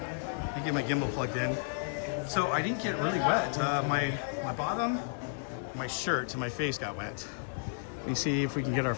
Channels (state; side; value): silent; right; digital silence